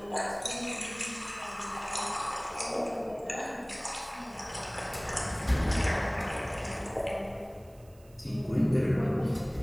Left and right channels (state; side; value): noise; right; hiss, 28 dB below the sound